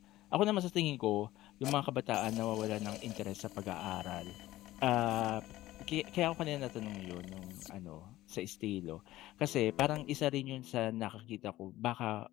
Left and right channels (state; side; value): quieter; right; 16.0 dB